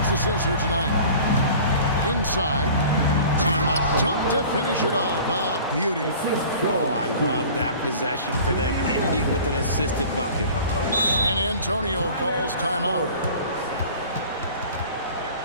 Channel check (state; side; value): inverted; both; correlation -0.43